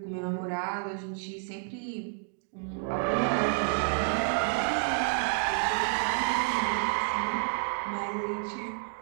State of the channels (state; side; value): silent; left; 56 dB below the other